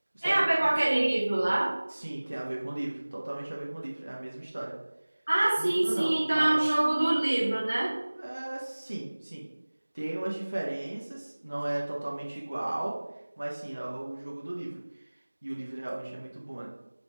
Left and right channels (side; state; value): both; inverted; correlation -1.00